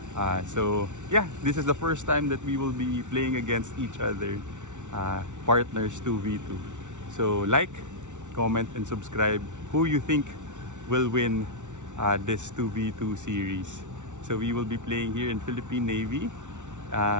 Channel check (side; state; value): left; late; 0.86 ms